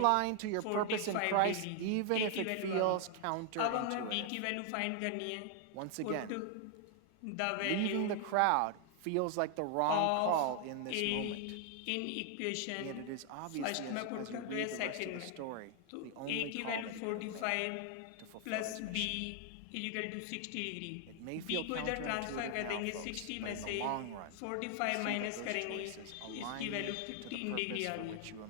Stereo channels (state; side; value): different; both; correlation 0.00